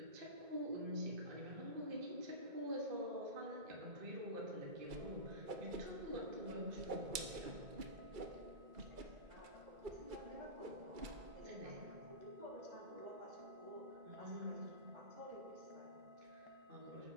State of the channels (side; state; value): left; late; 2.3 ms